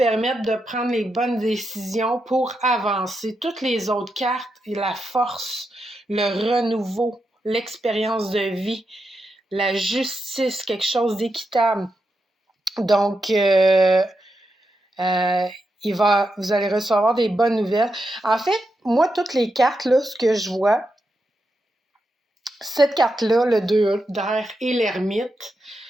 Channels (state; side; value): normal; both; correlation 0.86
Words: de prendre les bonnes décisions pour avancer. Toutes les autres cartes, la force, le renouveau, l'expérience de vie, la justice, quelque chose d'équitable. Donc, vous allez recevoir des bonnes nouvelles. En fait, moi, toutes les cartes, là, ce que je vois, cette carte-là, le 2 d'air et l'ermite,